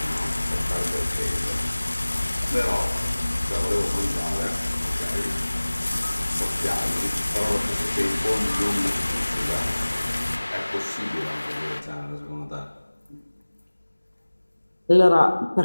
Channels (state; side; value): inverted; both; correlation -1.00